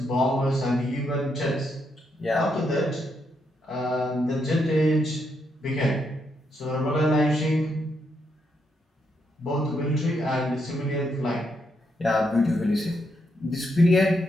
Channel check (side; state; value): both; normal; correlation 0.79